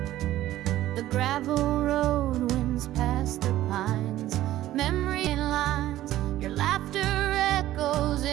The gravel road winds past the pines. Memory lines, your laughter echoes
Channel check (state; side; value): quieter; left; 14.3 dB